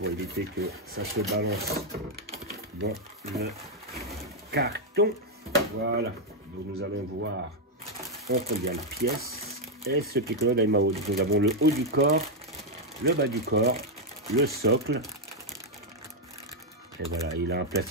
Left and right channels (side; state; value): both; normal; correlation 0.01